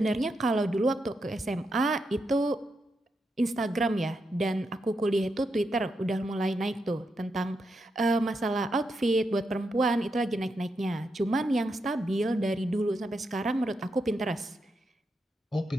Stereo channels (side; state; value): both; normal; correlation 0.84